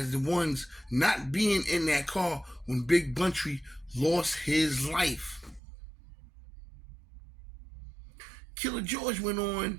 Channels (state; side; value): drops out; left; at 5.6 s